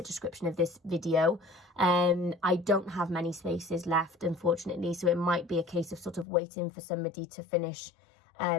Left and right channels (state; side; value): drops out; right; at 6.2 s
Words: description of this video. I don't have many spaces left, unfortunately, so it might be a case of sort of waiting for somebody to finish